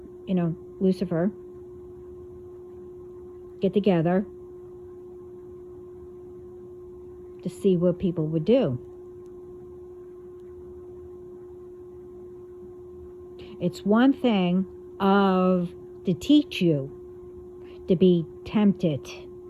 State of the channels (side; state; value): both; identical; correlation 1.00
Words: Lucifer get together to see what people would do. It's one thing to teach you to be tempted.